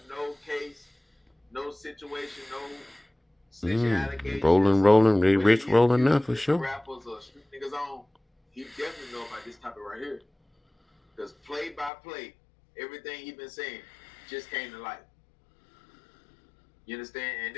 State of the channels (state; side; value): drops out; right; at 11.9 s